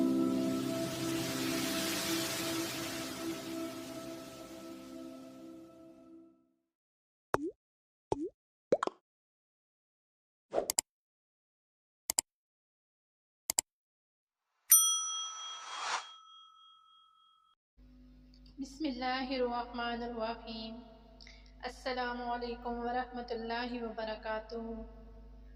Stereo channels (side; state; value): both; identical; correlation 1.00